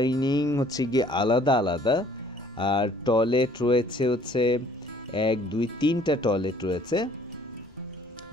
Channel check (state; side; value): noise; left; rumble, 27 dB below the sound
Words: হচ্ছে গিয়ে আলাদা আলাদা, আর টয়লেট রয়েছে হচ্ছে 1 2 3টা টয়লেট রয়েছে।